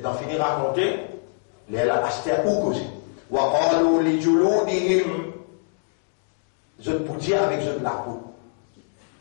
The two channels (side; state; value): right; silent; 62 dB below the other